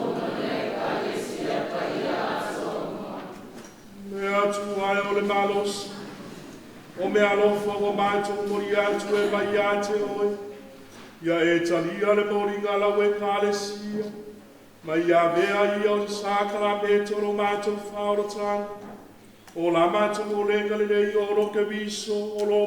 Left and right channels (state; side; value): identical; both; correlation 1.00